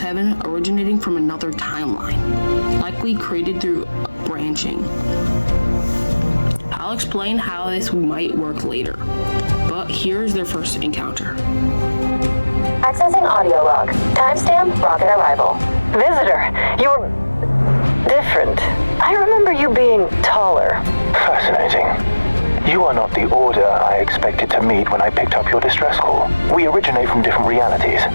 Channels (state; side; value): inverted; both; correlation -1.00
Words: originating from another timeline, likely created through branching. I'll explain how this might work later, but here's their first encounter. Accessing audio log. Timestamp rocket arrival. Visitor, you're different. I remember you being taller. Fascinating. You are not the Order I expected to meet when I picked up your distress call. We originate from different realities,